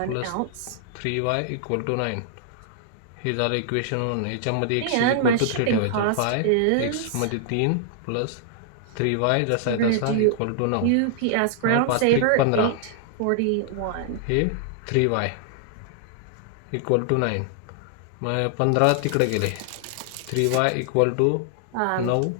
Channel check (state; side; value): different; both; correlation -0.01